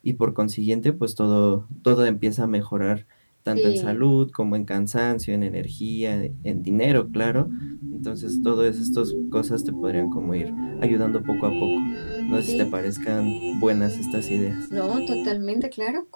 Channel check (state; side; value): inverted; both; correlation -1.00